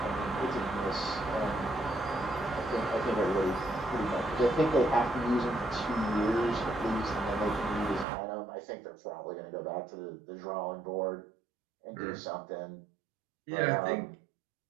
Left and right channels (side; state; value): left; drops out; at 8.1 s